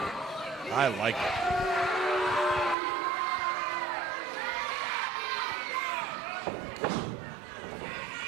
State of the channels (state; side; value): drops out; left; at 2.8 s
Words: I like it.